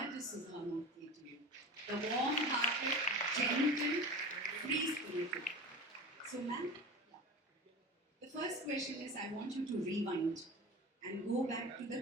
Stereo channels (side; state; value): both; normal; correlation 0.33